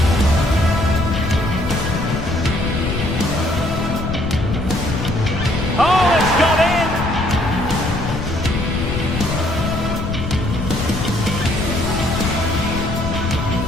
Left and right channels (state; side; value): noise; left; rumble, 4 dB below the sound